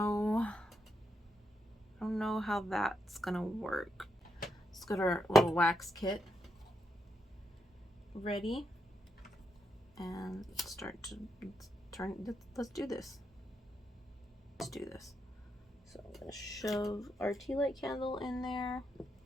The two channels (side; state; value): both; normal; correlation 0.82